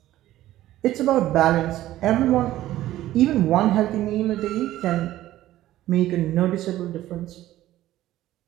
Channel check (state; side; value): quieter; left; 14.5 dB